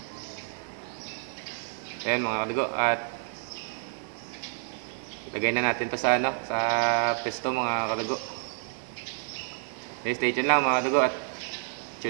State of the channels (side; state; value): left; silent; 58 dB below the other